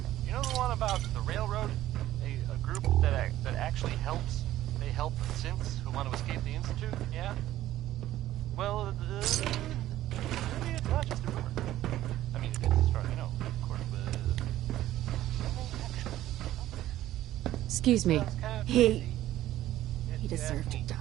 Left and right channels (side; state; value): left; quieter; 14.0 dB